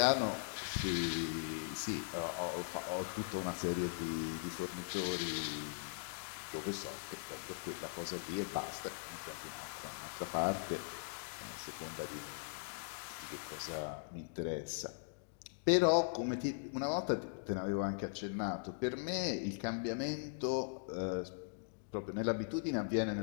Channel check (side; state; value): right; silent; digital silence